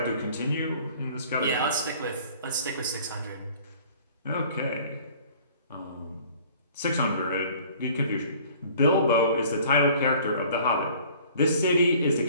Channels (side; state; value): both; inverted; correlation -0.51